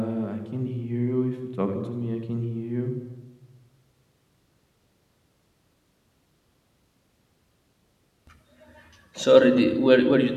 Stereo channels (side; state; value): both; identical; correlation 1.00